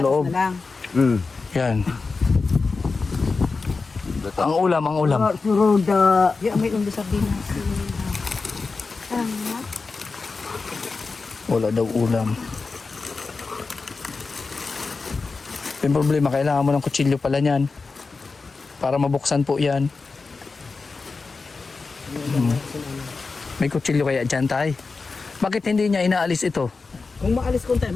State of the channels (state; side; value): quieter; right; 4.2 dB